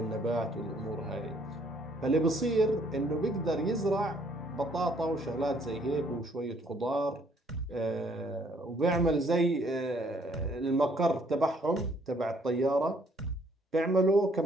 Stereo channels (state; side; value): normal; both; correlation 0.64